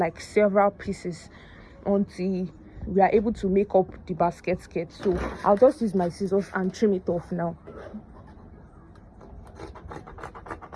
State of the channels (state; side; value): identical; both; correlation 1.00